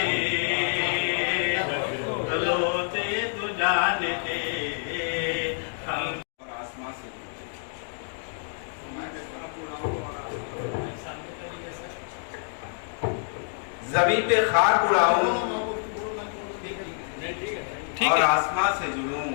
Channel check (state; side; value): silent; right; digital silence